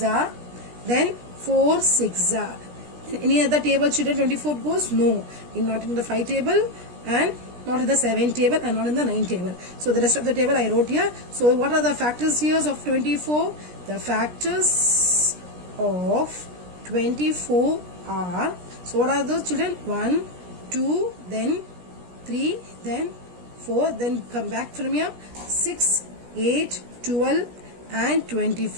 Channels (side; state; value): left; late; 17 ms